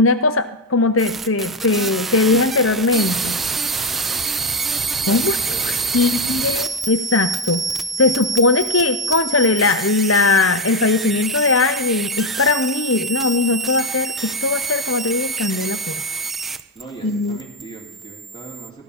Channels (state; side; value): normal; both; correlation 0.08